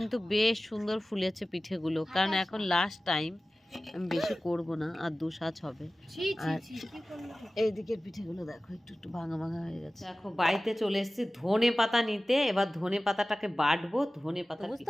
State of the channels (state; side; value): normal; both; correlation 0.97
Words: বেশ সুন্দর ফুলেছে পিঠেগুলো। কারণ এখন লাস্ট টাইম, আমি বেশি করব না, আর 2 সাজ হবে। আর এই দিকের পিঠেগুলো দেখো একটু একটু ভাঙা ভাঙা হয়ে গেছে। দেখো বাড়িতে চলে এসেছি ধনে পাতা নিতে। এবার ধনে পাতাটাকে বাটবো। ধনে পাতা বুঝতে